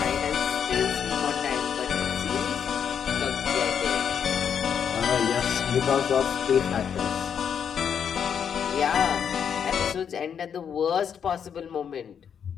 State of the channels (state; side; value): quieter; right; 7.8 dB